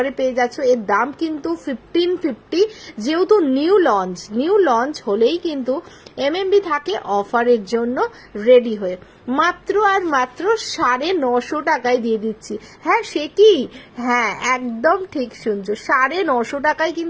পেয়ে যাচ্ছ। এর দাম কিন্তু 1550, যেহেতু নিউ লঞ্চ হলেই কিন্তু এমএমবি থাকে অফারের জন্য রেডি হয়ে, মাত্র আর মাত্র 950 টাকায় দিয়ে দিচ্ছি। হ্যাঁ সে কি, হ্যাঁ একদম ঠিক শুনছো, 950 টাকায়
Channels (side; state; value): both; identical; correlation 1.00